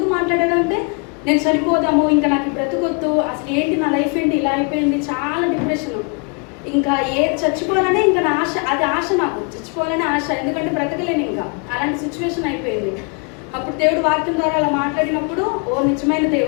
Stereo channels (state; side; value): quieter; right; 35.4 dB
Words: మాట్లాడాడంటే, నేను చనిపోదాము, ఇంకా నాకు బ్రతుకొద్దు, అసలు ఏంటి నా లైఫ్ ఏంటి ఇలా అయిపోయింది, చాలా డిప్రెషన్, ఇంకా చచ్చిపోవాలనే ఇంకా నా ఆశ, అది ఆశ, నాకు చచ్చిపోవాలనే ఆశ, ఎందుకంటే బ్రతకలేను ఇంకా, అలాంటి సిచ్యువేషన్ అయిపోయింది. అప్పుడు దేవుడు వాక్యం ద్వారా అలా మాట్లాడినప్పుడు, ఓ నిజమైన